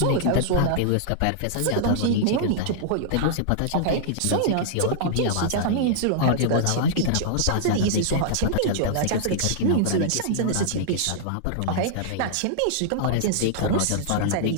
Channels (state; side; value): different; both; correlation -0.01